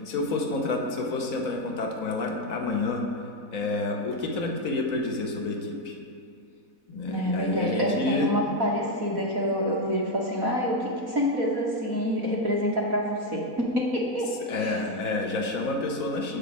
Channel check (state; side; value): late; left; 4.0 ms